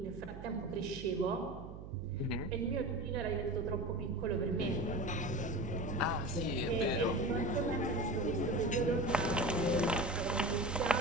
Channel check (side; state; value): right; noise; hum, 12 dB below the sound